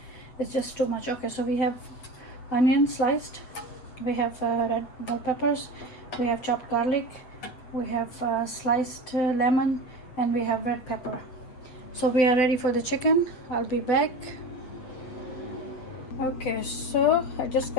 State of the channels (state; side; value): late; right; 8.3 ms